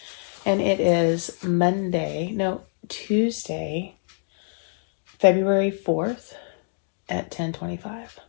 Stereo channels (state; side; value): silent; right; digital silence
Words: And it is Tuesday, February 4th at 10:25.